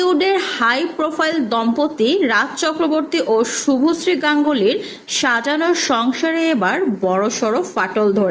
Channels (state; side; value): identical; both; correlation 1.00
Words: হাই প্রোফাইল দম্পতি রাজ চক্রবর্তী ও শুভশ্রী গাঙ্গুলির সাজানো সংসারে এবার বড়সড় ফাটল